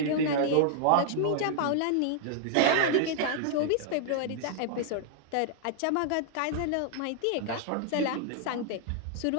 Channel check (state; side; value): different; both; correlation 0.00